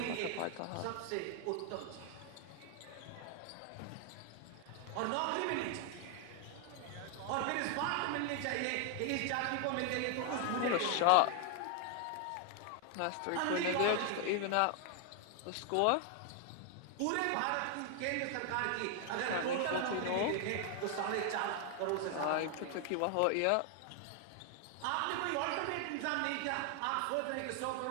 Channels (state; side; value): different; both; correlation 0.00